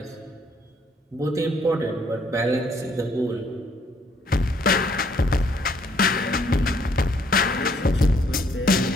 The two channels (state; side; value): normal; both; correlation 0.67